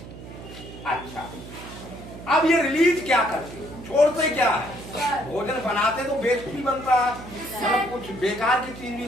अच्छा, अब ये रिलीज क्या करते हैं? छोड़ते क्या है? भोजन बनाते तो वेस्ट भी बनता है, मतलब कुछ बेकार की चीज भी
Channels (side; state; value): right; noise; hum, 14 dB below the sound